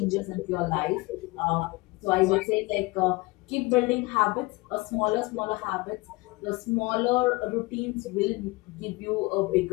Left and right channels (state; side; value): quieter; right; 23.5 dB